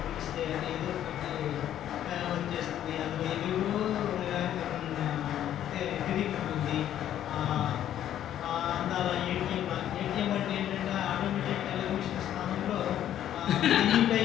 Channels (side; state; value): right; quieter; 11.2 dB